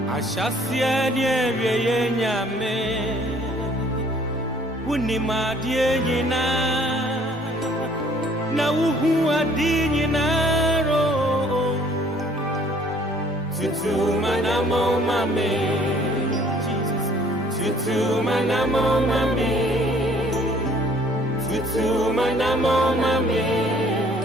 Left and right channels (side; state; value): left; noise; rumble, 30 dB below the sound